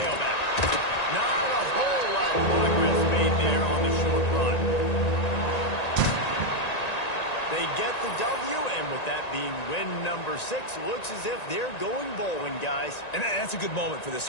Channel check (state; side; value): late; right; 1.9 ms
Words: Not a whole lot of progress made there on the short run. They get the W, and with that being win number 6, looks as if they're going bowling, guys. And that's a good moment for this